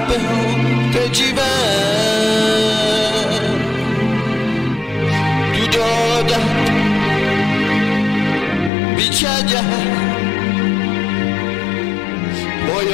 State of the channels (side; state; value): right; drops out; at 8.7 s